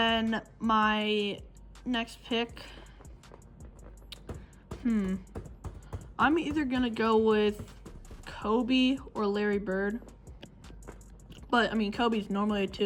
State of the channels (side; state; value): both; identical; correlation 1.00